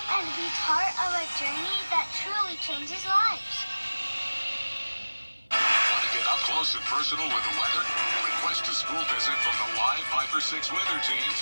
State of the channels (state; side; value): inverted; both; correlation -1.00